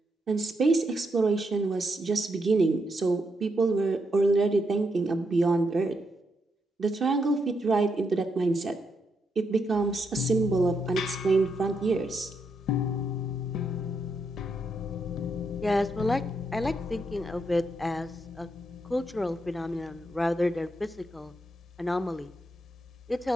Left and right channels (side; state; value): both; normal; correlation 0.80